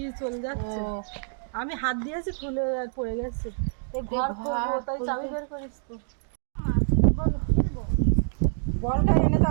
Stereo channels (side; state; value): left; silent; digital silence